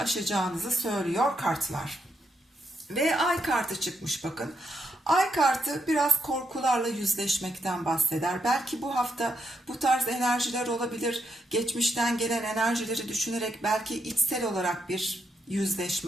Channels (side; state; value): both; normal; correlation 0.81